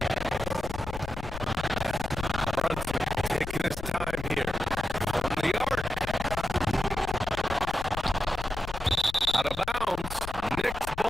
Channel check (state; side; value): noise; left; rumble, 9 dB below the sound